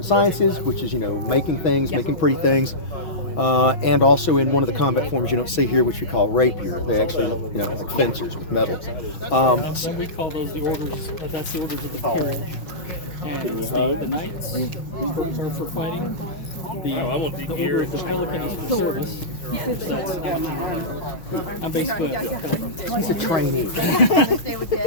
sciences, which is, making things, making pretty things, and also in one of the combat forms you don't see here, which we call rapier. They actually, like fencers with metal. And we call those the orders, that's the orders of the peerage. And the knights are for fighting. The order of the pelican is for service. That's I'm basically a pelican. He's a trainee.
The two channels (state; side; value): late; right; 6.4 ms